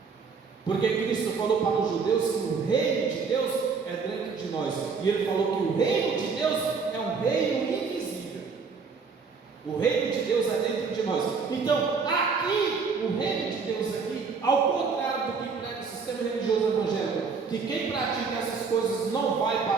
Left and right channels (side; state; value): left; quieter; 5.2 dB